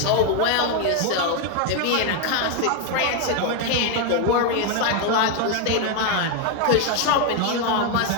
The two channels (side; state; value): both; different; correlation 0.01